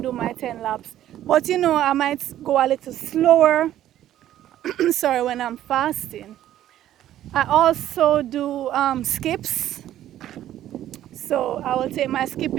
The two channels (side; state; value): left; quieter; 12.4 dB